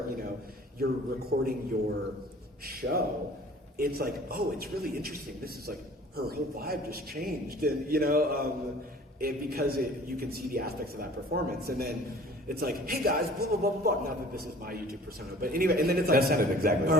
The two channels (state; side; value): normal; both; correlation 0.48